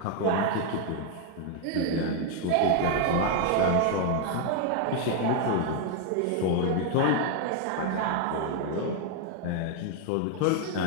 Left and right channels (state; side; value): different; both; correlation 0.01